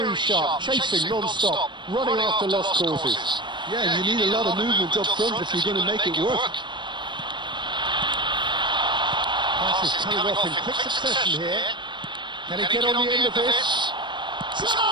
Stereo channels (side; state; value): left; late; 0.22 ms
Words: sharp, chasing non-stop, running after lost causes. Yeah, you need a lot of movement up front if you're going to make it work. Pass is coming off in quick succession here. Can he get on the end of this?